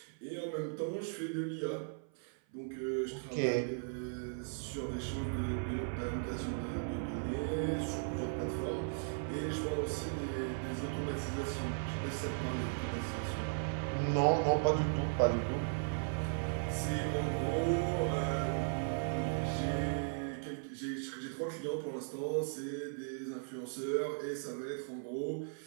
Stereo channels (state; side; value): silent; left; 53 dB below the other